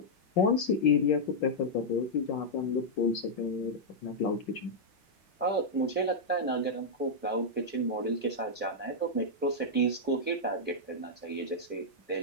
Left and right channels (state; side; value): normal; both; correlation -0.06